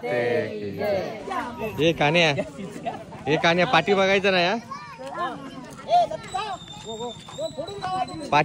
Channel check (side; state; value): both; identical; correlation 1.00